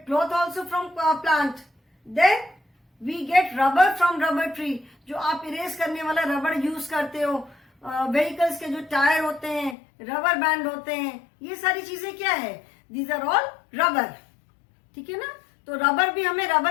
cloth also from plant. Then we get rubber from rubber tree. जो आप इरेज करने वाला रबर यूज करते हो, व्हीकल्स के जो टायर होते हैं, रबर बैंड होते हैं, ये सारी चीजें क्या है? These are all rubber. ठीक है ना? तो रबर भी हमें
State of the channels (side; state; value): right; drops out; at 9.8 s